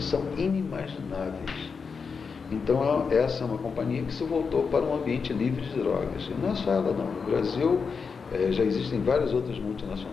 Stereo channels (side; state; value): right; quieter; 5.4 dB